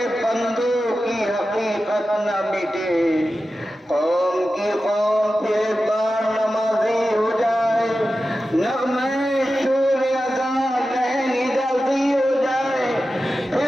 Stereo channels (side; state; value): both; normal; correlation 0.93